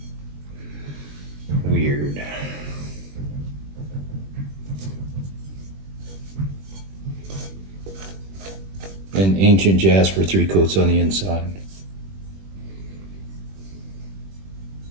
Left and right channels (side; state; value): left; late; 21 ms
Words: Weird. And Ancient Jasper, 3 coats on the inside.